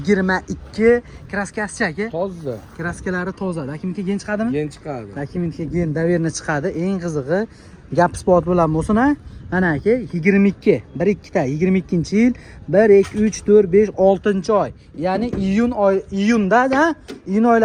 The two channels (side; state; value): both; identical; correlation 1.00